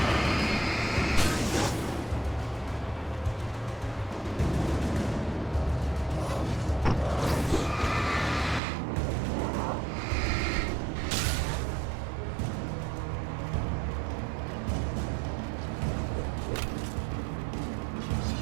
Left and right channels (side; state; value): left; drops out; at 8.6 s